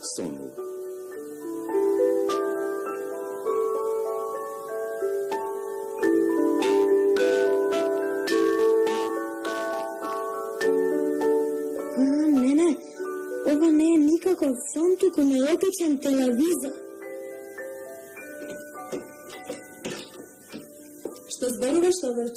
сонува. Не, ова не е никаков сон, туку необичен телевизор. Што зборуваш,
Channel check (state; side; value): identical; both; correlation 1.00